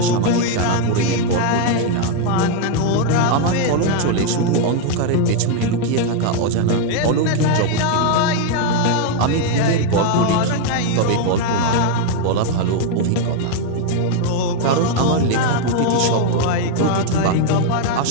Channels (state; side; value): different; both; correlation 0.00